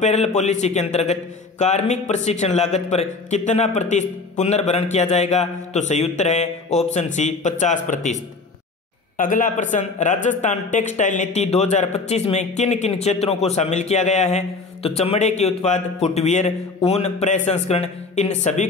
पॉलिसी के अंतर्गत कार्मिक प्रशिक्षण लागत पर कितना प्रतिशत पुनर्भरण किया जाएगा? तो सही उत्तर है ऑप्शन सी, 50%। अगला प्रश्न, राजस्थान टेक्सटाइल नीति 2025 में किन किन क्षेत्रों को शामिल किया गया है? तो चमड़े के उत्पाद, फुटवियर, ऊन प्रसंस्करण, इन सभी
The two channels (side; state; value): right; quieter; 4.1 dB